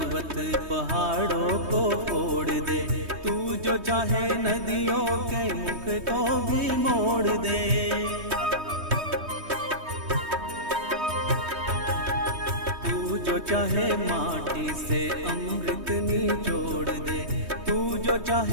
पहाड़ों को फोड़ दे, तू जो चाहे नदियों के मुख को भी मोड़ दे। तू जो चाहे माटी से अमृत निचोड़ दे, तू जो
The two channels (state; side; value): late; left; 3.2 ms